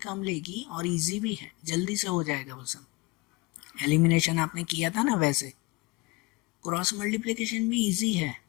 लेगी और इजी भी है, जल्दी से हो जाएगा वो सब। एलिमिनेशन आपने किया था ना वैसे। क्रॉस मल्टीप्लिकेशन भी इजी है,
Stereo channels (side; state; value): right; quieter; 23.8 dB